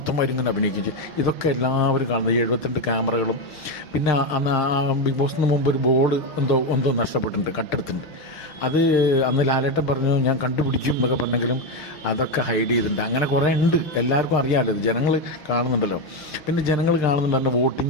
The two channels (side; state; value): right; late; 6.6 ms